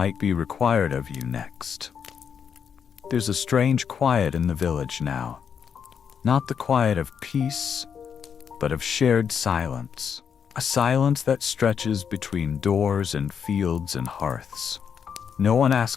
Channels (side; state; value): right; quieter; 7.3 dB